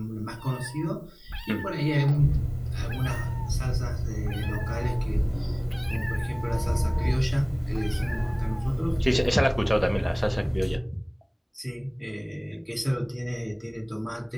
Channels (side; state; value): both; identical; correlation 1.00